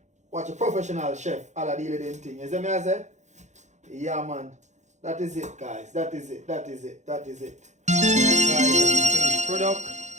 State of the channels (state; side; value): late; left; 0.34 ms